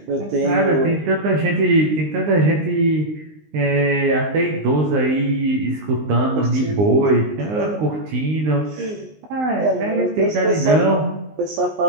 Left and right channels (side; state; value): left; late; 19 ms